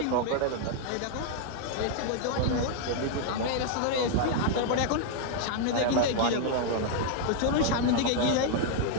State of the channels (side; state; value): both; different; correlation 0.00